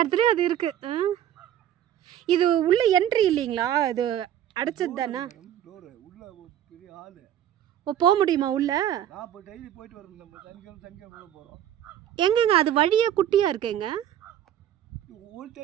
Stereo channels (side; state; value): left; quieter; 10.9 dB